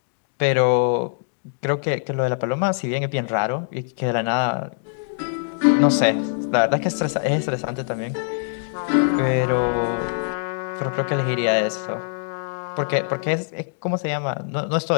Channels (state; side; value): silent; right; digital silence